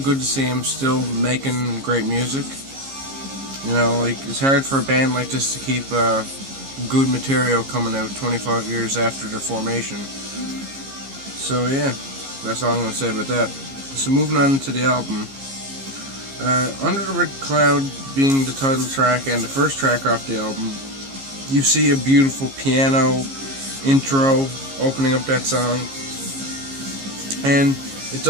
to see him still making great music. It's hard for a band like this to keep good material coming out 25 years after their formation. So yeah, that's all I'm going to say about that. So moving on to the album. Under the Red Cloud being the title track and the first track off the album, you see a beautiful piano intro opening up that song. And it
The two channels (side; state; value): left; late; 15 ms